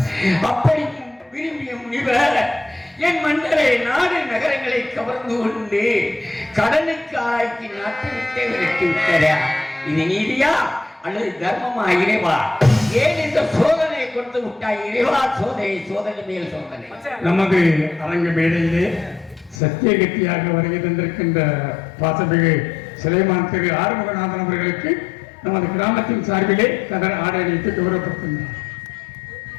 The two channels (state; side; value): drops out; right; at 19.6 s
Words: அப்படி விரும்பிய முனிவர் என் மன்னரை நாடு நகரங்களை கவர்ந்து கொண்டு கடனுக்கு ஆக்கி நாட்டு விட்டே விரட்டி விட்டாரா? இது நீதியா அல்லது தர்மமா இறைவா? ஏன் இந்த சோதனை கொடுத்து விட்டாய் இறைவா? சோதனை சோதனை மேல் சோதனை. நமது அரங்க மேடையிலே சத்தியகத்தியாக வருகை தந்திருக்கின்ற பாசமிகு சிலைமான் திரு ஆறுமுகநாதன் அவர்களுக்கு நமது கிராமத்தின் சார்பிலே கதர் ஆடை அணிவித்து கௌரவப்படுத்துகிறார்.